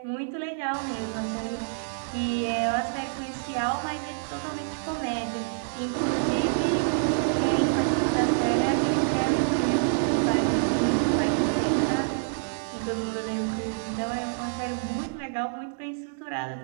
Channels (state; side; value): silent; left; digital silence